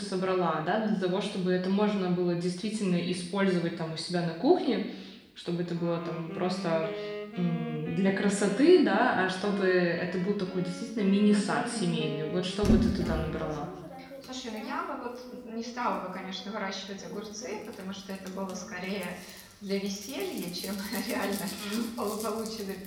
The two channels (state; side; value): identical; both; correlation 1.00